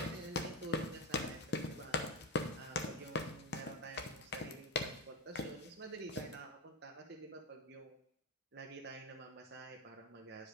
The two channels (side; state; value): both; normal; correlation 0.14